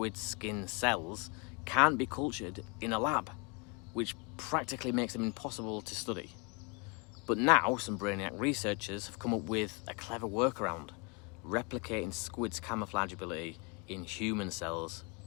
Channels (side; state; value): right; quieter; 32.2 dB